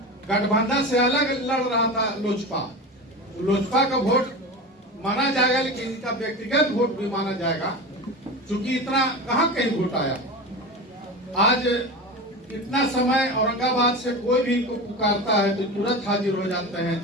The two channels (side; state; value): both; normal; correlation 0.27